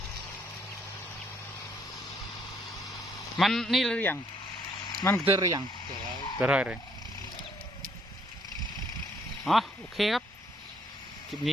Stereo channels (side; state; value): both; normal; correlation 0.67